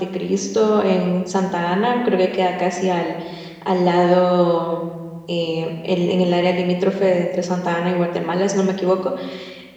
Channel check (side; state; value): both; identical; correlation 1.00